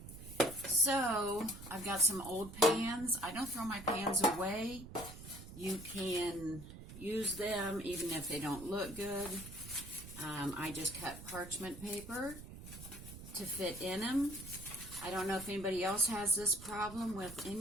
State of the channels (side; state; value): right; noise; rumble, 13 dB below the sound